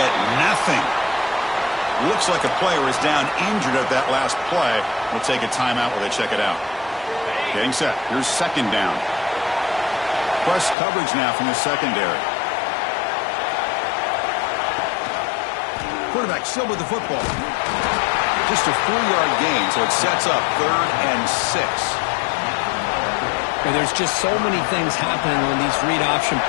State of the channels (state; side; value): drops out; right; at 10.8 s